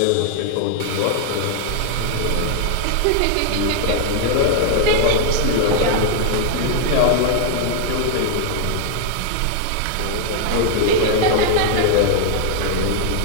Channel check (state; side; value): different; both; correlation 0.00